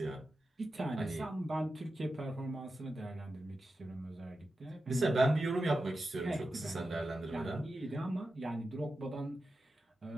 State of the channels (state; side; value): normal; both; correlation 0.91